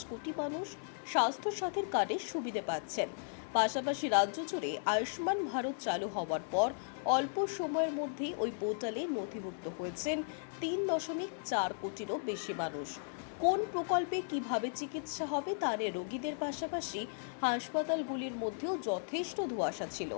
কোটি মানুষ স্বাস্থ্যসাথীর কার্ডের সুবিধা পাচ্ছেন। পাশাপাশি রাজ্য জুড়ে আয়ুষ্মান ভারত চালু হওয়ার পর অল্প সময়ের মধ্যেই ওই পোর্টালে নথিভুক্ত হয়েছেন 3.4 কোটিরও বেশি মানুষ। কোন প্রকল্পে কিভাবে চিকিৎসা হবে তা নিয়ে রোগীদের পাশাপাশি হাসপাতালগুলির মধ্যেও যথেষ্ট ধোঁয়াশা ছিল।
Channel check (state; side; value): silent; right; 54 dB below the other